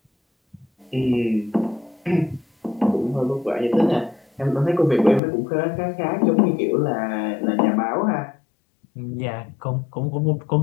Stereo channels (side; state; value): right; drops out; at 5.2 s